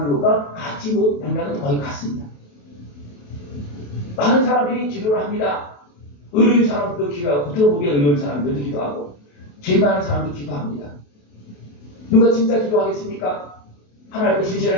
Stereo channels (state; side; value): late; right; 28 ms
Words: 것과 같이 맥락은 거의 같습니다. 많은 사람들이 기도를 합니다. 의로운 사람들도 기도하고 겉으로 보기에 의로운 사람들도 기도하고 죄 많은 사람도 기도합니다. 누가 진짜 기도하겠습니까? 하나님께